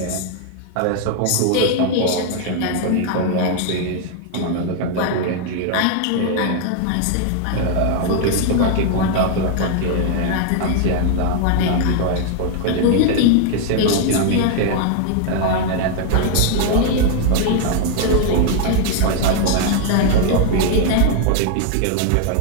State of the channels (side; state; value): both; different; correlation 0.00